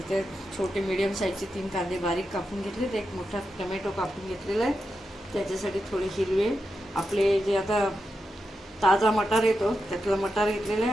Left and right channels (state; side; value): normal; both; correlation 0.87